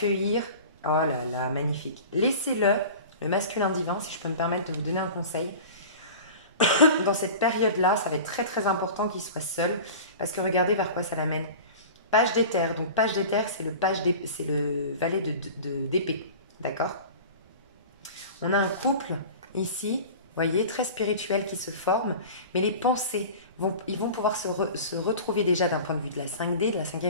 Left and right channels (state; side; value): inverted; both; correlation -0.37